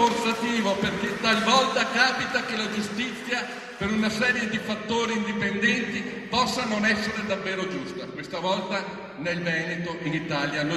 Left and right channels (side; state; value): both; identical; correlation 1.00